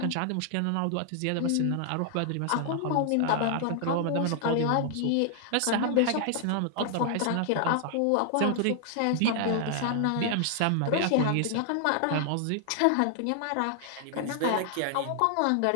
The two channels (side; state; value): both; different; correlation 0.00